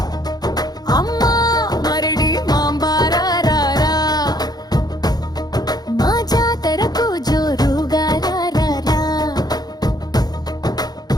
అమ్మా మరిడి మాంబా రా రా రా మా జాతరకు జోరుగా రా రా రా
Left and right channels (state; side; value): late; right; 0.19 ms